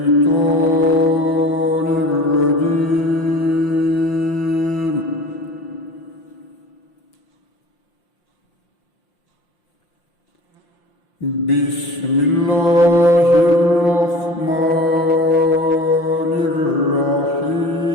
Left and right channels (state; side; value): late; right; 5.7 ms